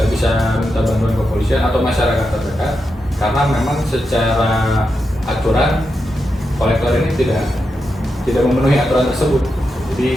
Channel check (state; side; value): normal; both; correlation 0.87